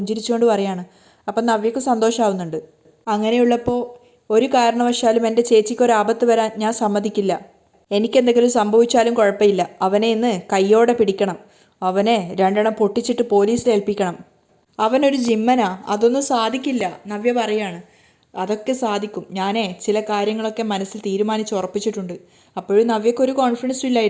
പറയാണ്. അപ്പം നവ്യക്ക് സന്തോഷമാവുന്നുണ്ട്. അങ്ങനെയുള്ളപ്പോൾ ഒരു കാരണവശാലും എൻ്റെ ചേച്ചിക്കൊരാപത്ത് വരാൻ ഞാൻ സമ്മതിക്കില്ല. എനിക്കെന്തെങ്കിലും സംഭവിച്ചാലും കുഴപ്പമില്ല. അവനെ ഇന്ന് കയ്യോടെ പിടിക്കണം. അവനെ രണ്ടെണ്ണം പൊട്ടിച്ചിട്ട് പോലീസിൽ ഏൽപ്പിക്കണം. അവനൊരു ജിമ്മനാ, അതൊന്നും സാധിക്കില്ല. നവ്യ പറയാണ്. അതൊക്കെ സാധിക്കും. ഞാനേ ചില കാര്യങ്ങളൊക്കെ മനസ്സിൽ തീരുമാനിച്ച് ഉറപ്പിച്ചിട്ടുണ്ട്. അപ്പോഴും നവ്യക്കൊരു കോൺഫിഡൻസും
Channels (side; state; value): both; identical; correlation 1.00